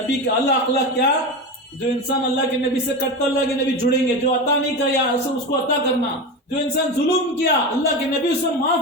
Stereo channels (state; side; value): normal; both; correlation 0.22